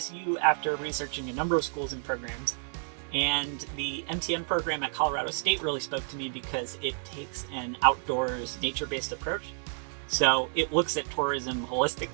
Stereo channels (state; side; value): silent; left; 58 dB below the other